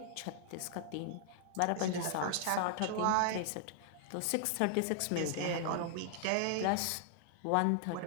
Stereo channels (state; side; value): different; both; correlation 0.00